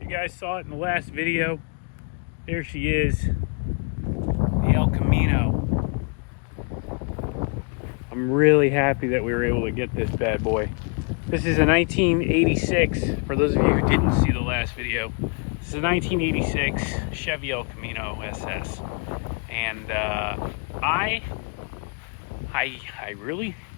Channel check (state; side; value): quieter; right; 37.3 dB